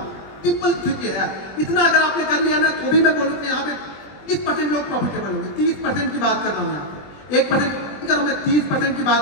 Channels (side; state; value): right; late; 20 ms